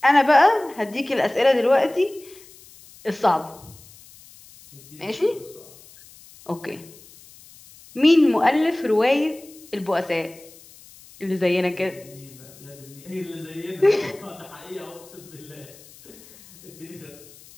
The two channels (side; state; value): left; noise; hiss, 23 dB below the sound